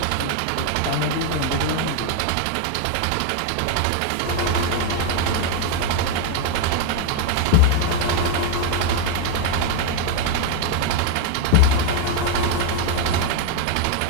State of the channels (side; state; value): both; different; correlation 0.01